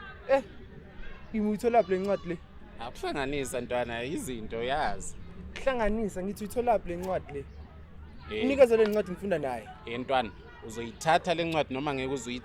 Ngiyithola lapha lencwadi le. Akuhlanganisa ntwana izinto yazi. Hlanganisa ngithi uyithola lapha lencwadi le. Unikeze le ncwadi ngifunda naye. Ntwana, uzoyithatha le ncwadi noma ngeke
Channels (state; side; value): identical; both; correlation 1.00